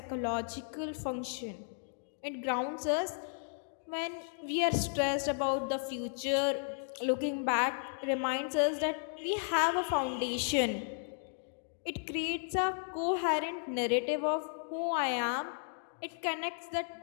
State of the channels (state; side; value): silent; right; digital silence